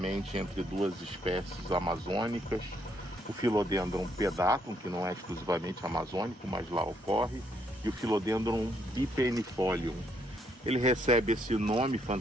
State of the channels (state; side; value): normal; both; correlation 0.72